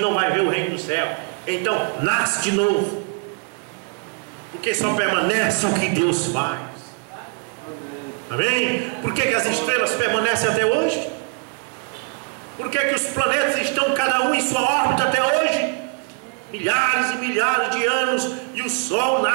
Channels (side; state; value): left; quieter; 36.9 dB